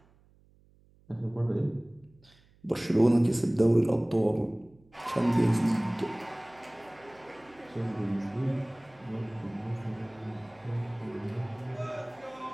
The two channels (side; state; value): right; noise; hum, 30 dB below the sound